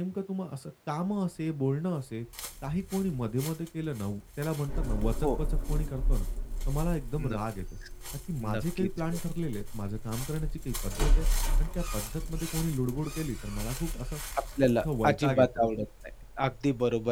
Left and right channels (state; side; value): identical; both; correlation 1.00